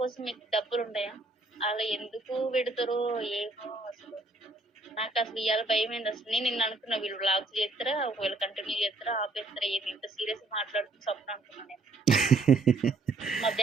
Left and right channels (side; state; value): left; quieter; 3.2 dB